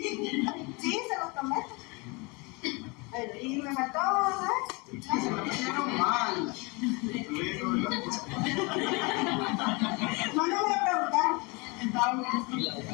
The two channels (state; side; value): quieter; right; 28.1 dB